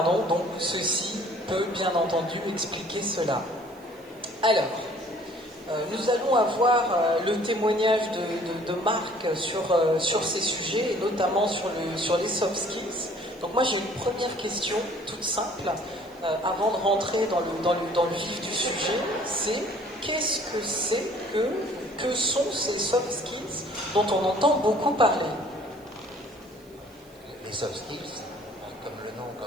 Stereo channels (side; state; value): right; noise; hiss, 29 dB below the sound